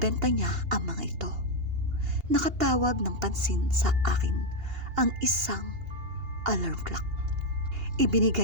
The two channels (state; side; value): late; left; 2.8 ms